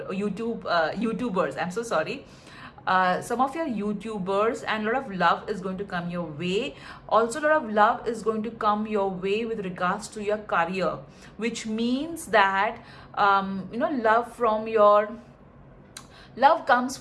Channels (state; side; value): identical; both; correlation 1.00